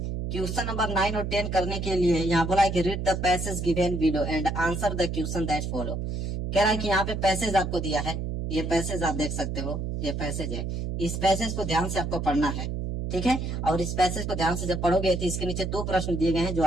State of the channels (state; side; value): noise; right; hum, 3 dB below the sound